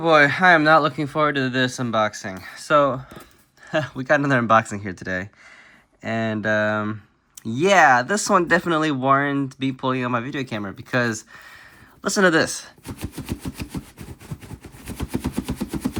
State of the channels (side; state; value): both; identical; correlation 1.00